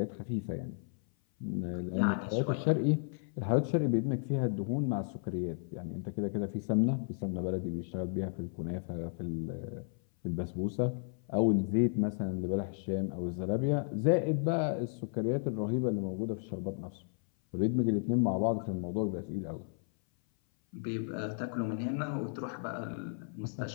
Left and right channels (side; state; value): right; silent; 55 dB below the other